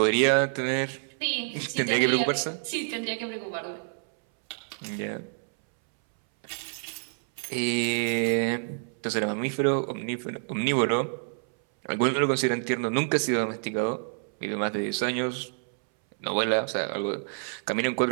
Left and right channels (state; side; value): silent; left; 59 dB below the other